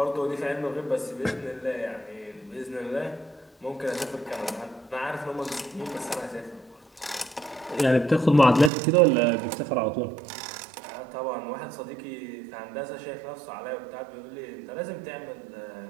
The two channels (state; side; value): drops out; left; at 8.7 s